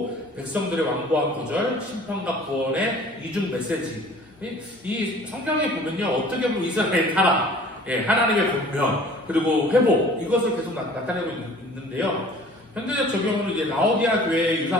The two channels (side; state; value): both; normal; correlation 0.49